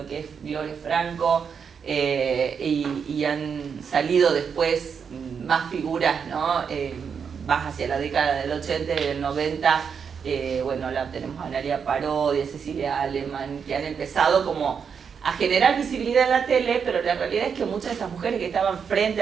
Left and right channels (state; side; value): quieter; left; 6.6 dB